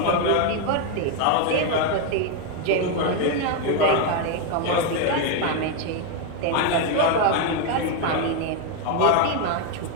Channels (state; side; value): different; both; correlation 0.02